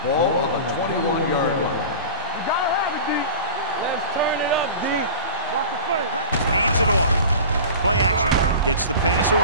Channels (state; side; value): inverted; both; correlation -0.35